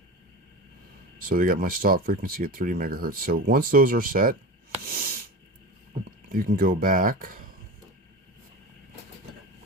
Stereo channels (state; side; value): normal; both; correlation 0.28